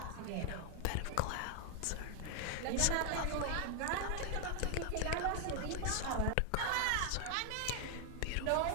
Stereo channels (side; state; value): both; different; correlation 0.00